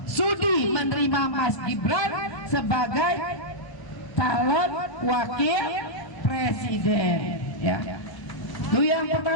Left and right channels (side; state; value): right; late; 1.0 ms